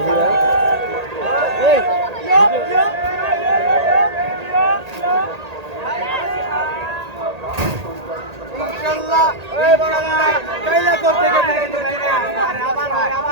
ইনশাআল্লাহ কাইলা করতে গেলে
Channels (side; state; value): left; late; 1.8 ms